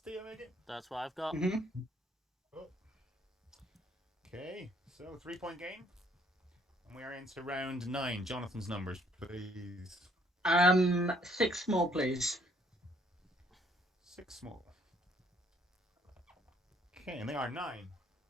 I make it. That's what I've got. Mm-hmm. Oh. Okay, so 3-point game. And we are into round 9. Jonathan's numbers, please. 6 more, please. 6 small. Okay, and they are 9,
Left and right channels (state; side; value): normal; both; correlation 0.65